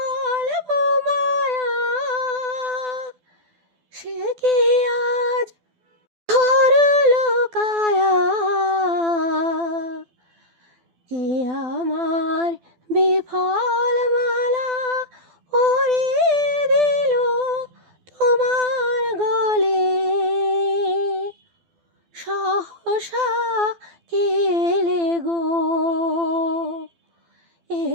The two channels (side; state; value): left; late; 12 ms